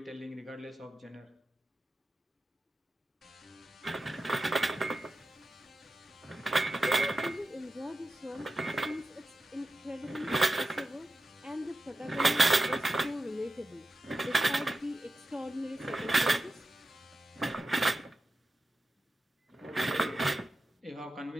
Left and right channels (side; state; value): both; normal; correlation 0.92